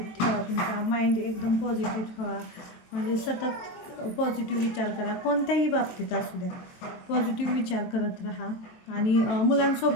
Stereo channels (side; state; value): right; late; 23 ms